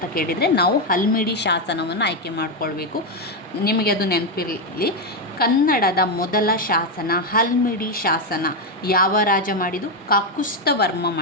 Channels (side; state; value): both; normal; correlation 0.06